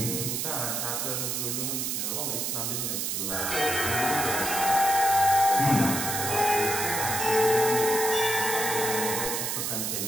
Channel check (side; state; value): right; noise; hiss, 1 dB below the sound